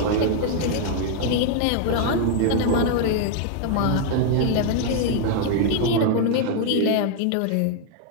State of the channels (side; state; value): both; different; correlation 0.00